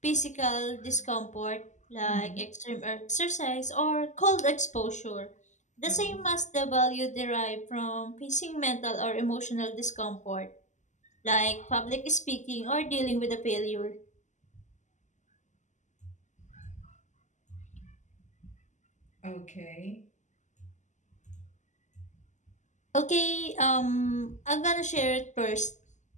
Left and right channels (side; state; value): right; late; 0.34 ms